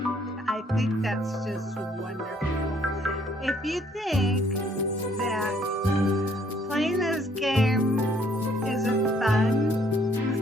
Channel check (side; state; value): both; normal; correlation 0.64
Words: I think that's just wonderful. If you think that playing this game isn't